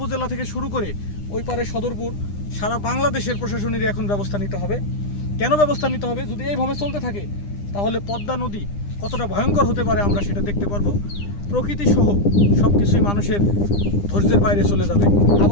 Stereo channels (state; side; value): late; right; 9.9 ms